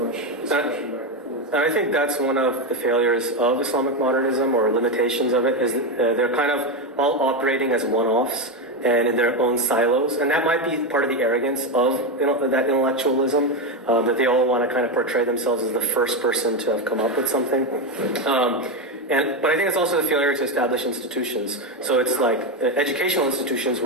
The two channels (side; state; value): both; normal; correlation 0.10